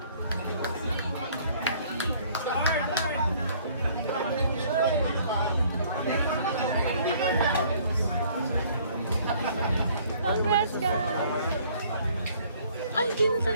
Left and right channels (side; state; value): both; inverted; correlation -0.58